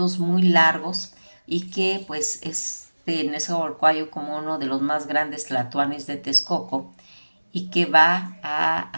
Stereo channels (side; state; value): both; inverted; correlation -1.00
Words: muy largos y que pues Nezahualcóyotl como uno de los más grandes tlatoanes de Texcoco y que va